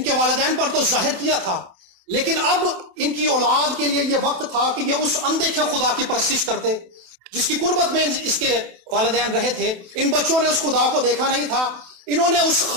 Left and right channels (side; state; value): left; late; 28 ms